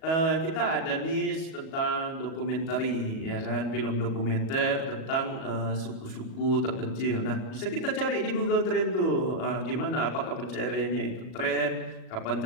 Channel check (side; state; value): right; late; 37 ms